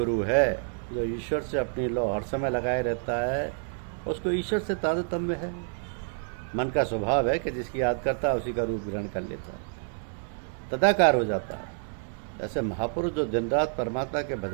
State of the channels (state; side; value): silent; left; 59 dB below the other